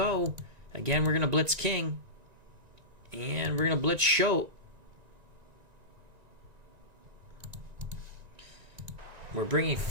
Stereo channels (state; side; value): late; left; 1.9 ms